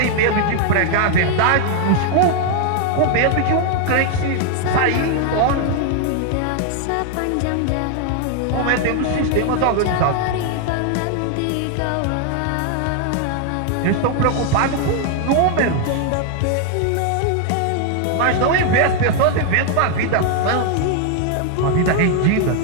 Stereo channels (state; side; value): different; both; correlation 0.00